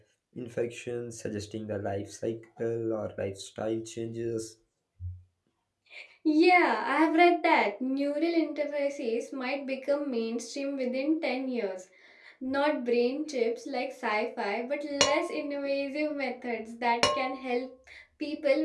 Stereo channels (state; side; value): identical; both; correlation 1.00